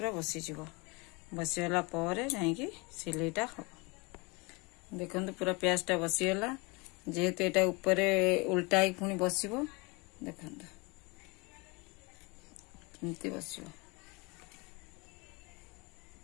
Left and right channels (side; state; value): right; quieter; 27.9 dB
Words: बसी जीवो बसीला पर जाई सिलेटा हो देखो पूरा प्याज टा बसीगला जेहेतु एटा ऊपर उल्टा ही पुणी बसिबो देखो केमती बसिबो